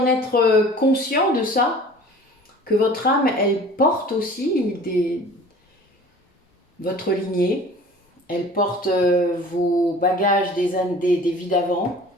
être conscient de ça, que votre âme, elle porte aussi votre lignée, elle porte vos bagages des vies d'avant,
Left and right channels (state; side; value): normal; both; correlation 0.45